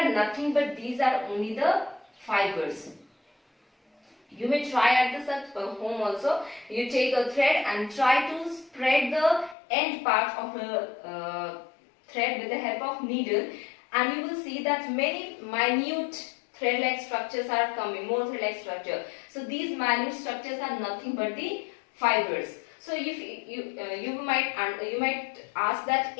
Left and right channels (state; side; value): drops out; right; at 9.6 s